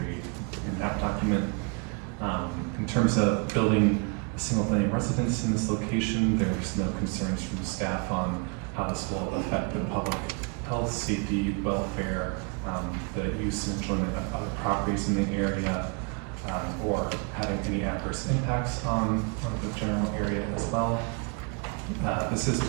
in that document. In terms of building a single-family residence in this location, there's no concerns from the staff on how this will affect the public health, safety, welfare, the use and enjoyment of other properties in the area, or having any adverse impacts on the general area as well. This is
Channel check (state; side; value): quieter; left; 34.6 dB